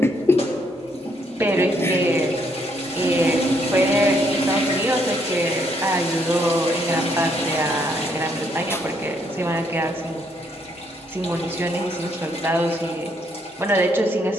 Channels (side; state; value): both; normal; correlation 0.71